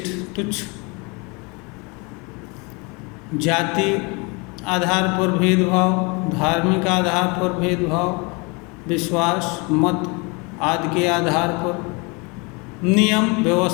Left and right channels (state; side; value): quieter; right; 29.3 dB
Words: तुच्छ, जाति आधार पर भेदभाव, धार्मिक आधार पर भेदभाव, विश्वास मत आदि के आधार पर, नियम